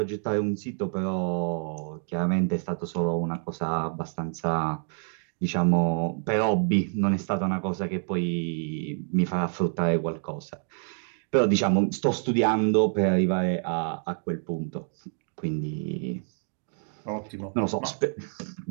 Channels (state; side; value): silent; left; 58 dB below the other